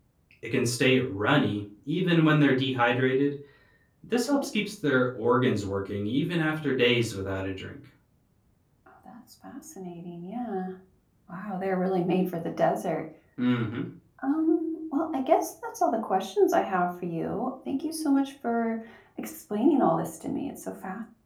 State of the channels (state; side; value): identical; both; correlation 1.00